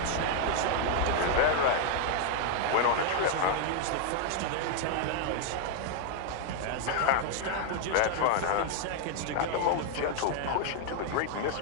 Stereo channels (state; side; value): different; both; correlation 0.00